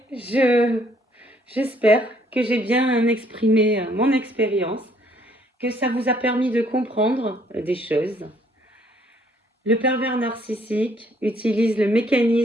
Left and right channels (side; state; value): both; normal; correlation 0.65